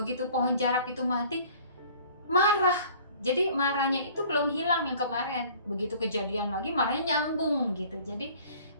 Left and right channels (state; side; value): inverted; both; correlation -0.50